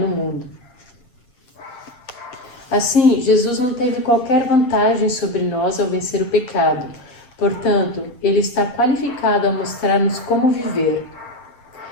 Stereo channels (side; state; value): right; late; 8.4 ms